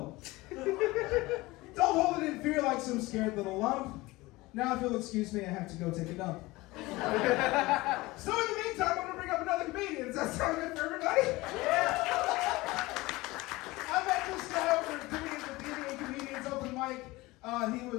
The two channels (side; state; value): right; quieter; 20.7 dB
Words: Don't hold it in fear like some scared little lump. Now, if you'll excuse me, I have to go take a dump. So in the meantime, I'm going to bring up another comedian. Does that sound good for everybody? Yeah! I met this guy over at Comedians Open Mic. He